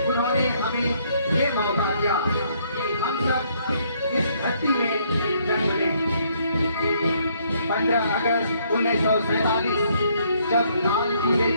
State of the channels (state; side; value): inverted; both; correlation -0.68